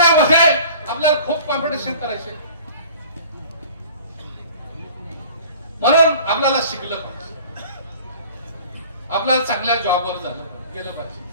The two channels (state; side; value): inverted; both; correlation -0.46